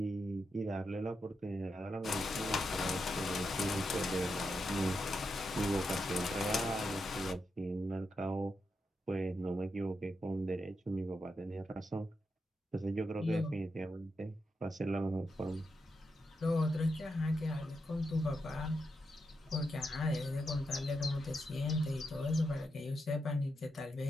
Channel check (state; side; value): normal; both; correlation 0.85